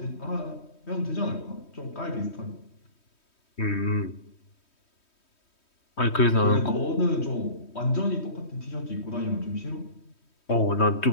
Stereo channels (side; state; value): right; late; 3.2 ms